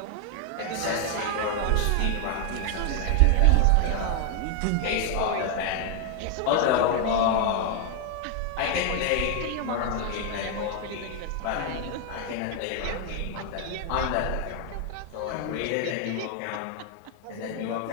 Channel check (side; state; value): both; different; correlation 0.01